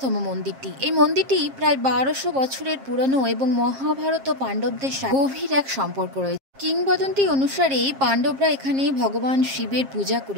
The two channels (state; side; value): late; left; 7.5 ms